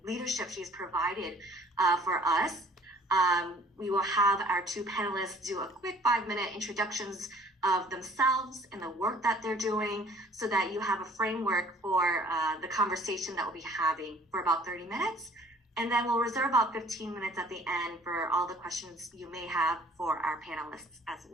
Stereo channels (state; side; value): normal; both; correlation 0.54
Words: leadership she's provided for us. We will have our two panelists do a quick 5-minute introductions of themselves and the work that they're doing so that you have a framework for the conversation that we'll be having for about 30 minutes. And then we'll reserve about 15 minutes at the end for all the questions you may have for our panelists as